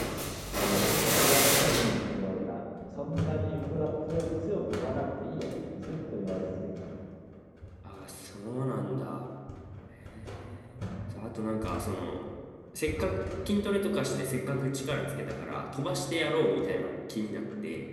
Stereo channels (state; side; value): identical; both; correlation 1.00